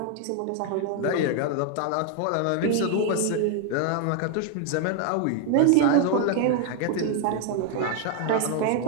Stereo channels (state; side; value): different; both; correlation 0.00